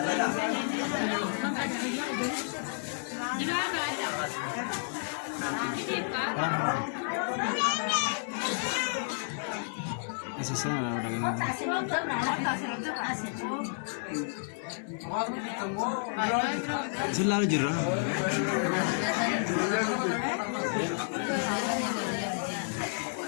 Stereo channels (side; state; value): right; silent; 57 dB below the other